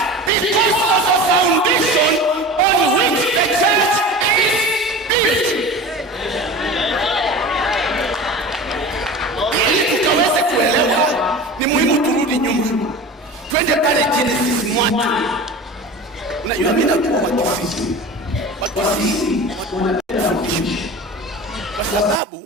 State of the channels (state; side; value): normal; both; correlation 0.34